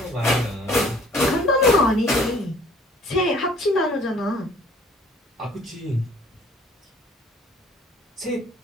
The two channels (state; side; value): normal; both; correlation 0.55